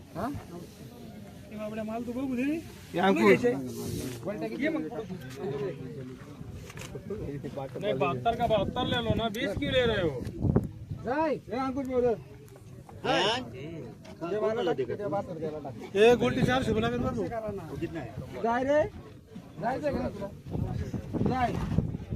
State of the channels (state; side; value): identical; both; correlation 1.00